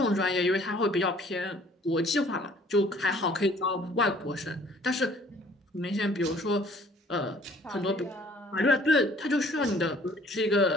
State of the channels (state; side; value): normal; both; correlation 0.56